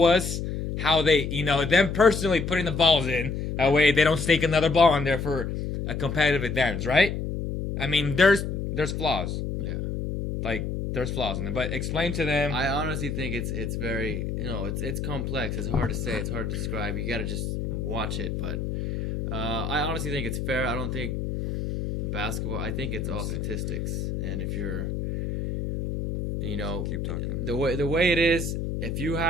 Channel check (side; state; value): left; noise; hum, 3 dB below the sound